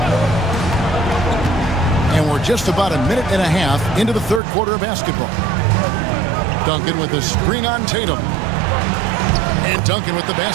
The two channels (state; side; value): drops out; left; at 4.4 s